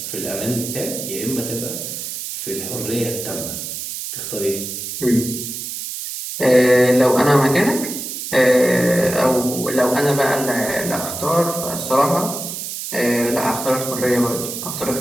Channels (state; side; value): noise; right; hiss, 6 dB below the sound